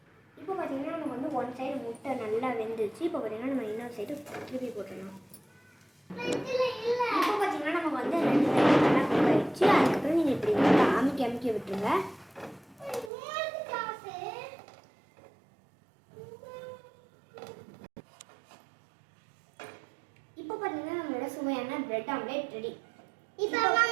இப்போ பார்த்தீங்கன்னா நமக்கு வந்து 1 சைடு முட்டை நல்லா வெந்துருச்சு. இப்போ பார்த்தீங்கன்னா நம்ம இன்னொரு சைடு திருப்பி போட்டுடணும். இப்போ பார்த்தீங்கன்னா நமக்கு வந்து 2 சைடு நல்லா குக் ஆகிடுச்சு. அதுக்கப்புறம் நீங்கள் இப்படி வந்து அமுக்கி விட்டுருங்க. இப்போ பார்த்தீங்கன்னா நம்மளோட சுவையான பிரெட் ஆம்லேட் ரெடி. இப்போ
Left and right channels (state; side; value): drops out; left; at 13.1 s